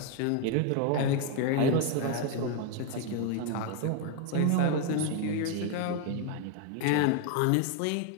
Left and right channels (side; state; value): both; different; correlation 0.01